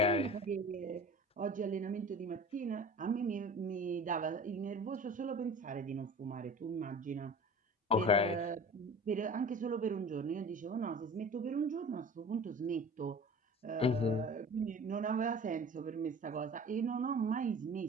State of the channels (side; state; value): both; normal; correlation 0.40